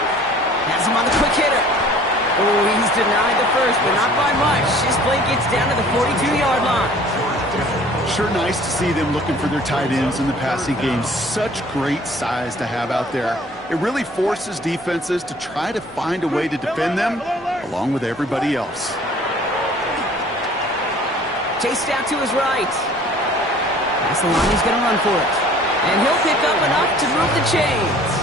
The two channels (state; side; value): normal; both; correlation 0.51